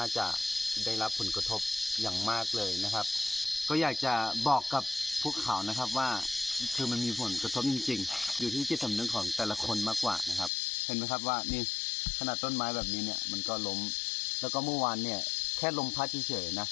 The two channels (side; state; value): right; drops out; at 10.5 s